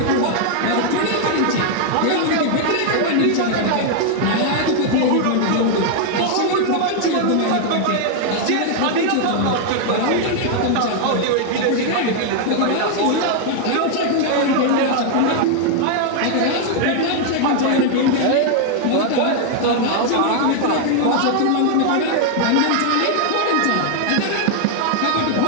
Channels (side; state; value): both; different; correlation 0.00